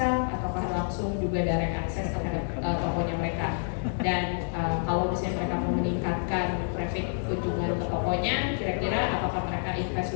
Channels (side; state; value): right; silent; digital silence